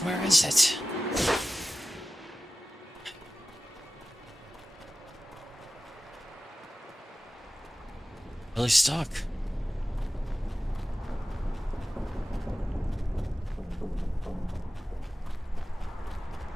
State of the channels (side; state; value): both; normal; correlation 0.94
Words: Where is it? Really stuck.